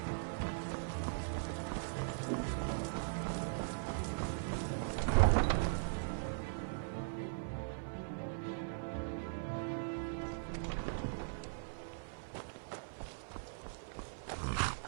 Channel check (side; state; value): left; silent; 51 dB below the other